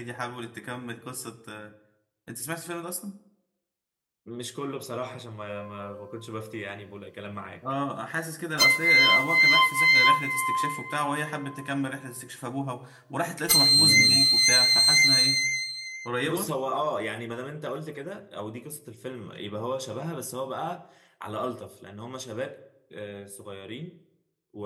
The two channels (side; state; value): both; identical; correlation 1.00